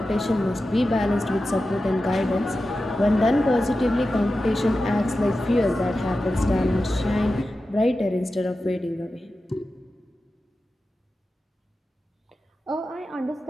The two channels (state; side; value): normal; both; correlation 0.93